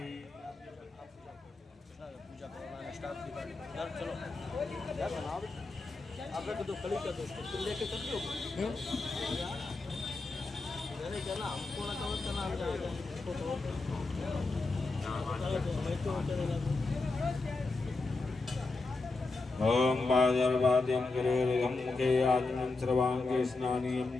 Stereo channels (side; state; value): right; quieter; 3.6 dB